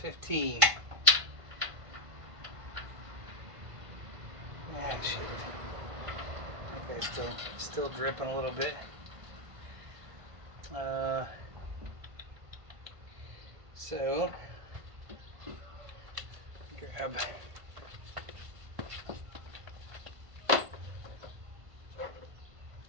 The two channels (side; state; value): left; late; 1.5 ms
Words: 15. Ah, shit. Okay, still dripping a little bit. So grab.